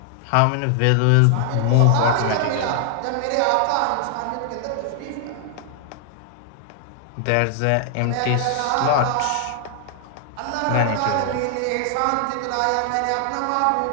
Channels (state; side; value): different; both; correlation 0.00